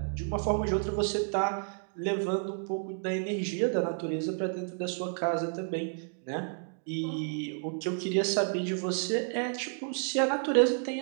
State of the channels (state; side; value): silent; left; 57 dB below the other